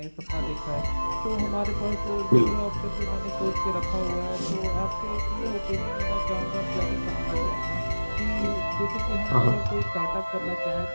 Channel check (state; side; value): inverted; both; correlation -1.00